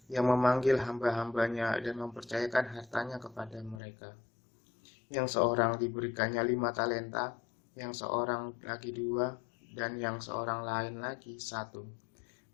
yang memanggil hamba-hambanya dan mempercayakan hartanya kepada mereka. Yang seorang diberikannya 5 talenta, yang seorang lagi 2, dan yang seorang lain lagi 1,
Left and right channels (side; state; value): right; drops out; at 3.8 s